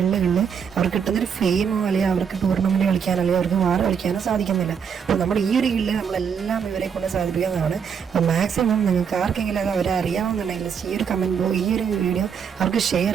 അവർക്ക് കിട്ടുന്നൊരു ഫെയിമോ അല്ലെങ്കിൽ അവർക്ക് ടൂർണമെൻറ്റ് കളിക്കാനോ അല്ലെങ്കിൽ അവർക്ക് വാർ കളിക്കാനോ സാധിക്കുന്നില്ല. അപ്പോൾ നമ്മുടെ ഈ ഒരു ഗില്ല് നമ്മളെല്ലാം ഇവരെ കൊണ്ട് സാധിപ്പിക്കുന്നതാണ്. അപ്പോൾ മാക്സിമം നിങ്ങൾക്ക് ആർക്കെങ്കിലും അത് അവരെ അറിയാവുന്നുണ്ടെങ്കിൽ ഈ ഒരു കമൻറ്റ് ഈ ഒരു വീഡിയോ അവർക്ക് ഷെയർ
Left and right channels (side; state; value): left; quieter; 7.0 dB